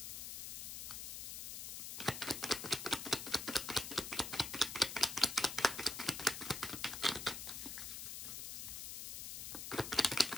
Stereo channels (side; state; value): left; noise; hiss, 6 dB below the sound